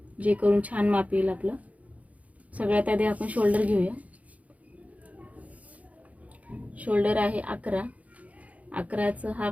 जे करून छान माप येईल आपलं। सगळ्यात आधी आपण शोल्डर घेऊया। शोल्डर आहे 11, 11चं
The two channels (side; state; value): left; late; 0.069 ms